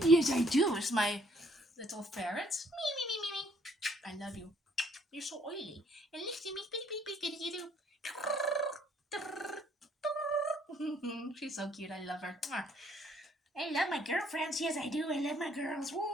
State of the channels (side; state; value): both; normal; correlation 0.65